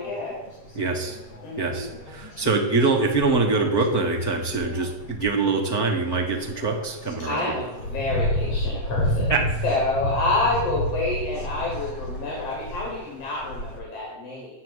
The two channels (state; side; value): late; right; 7.8 ms